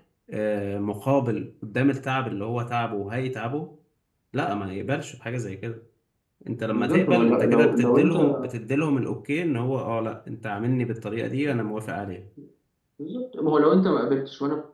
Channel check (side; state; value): both; identical; correlation 1.00